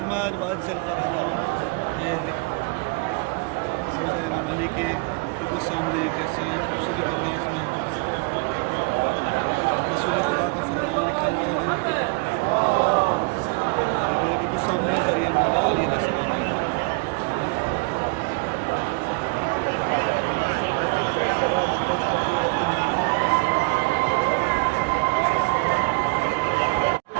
वअज्जिल फरजहुम। ये रोज़ा इमाम अली के बिल्कुल सामने कैसे खूबसूरत अंदाज में रसूल खुदा का फरमान लिखा हुआ है, ये मेरे बिल्कुल सामने ज़रिए मौला अली अलैहिस्सलाम है।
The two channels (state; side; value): quieter; left; 31.1 dB